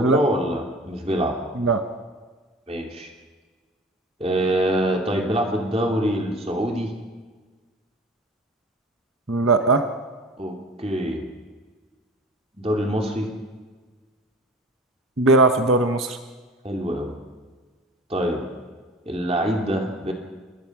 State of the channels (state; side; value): normal; both; correlation 0.40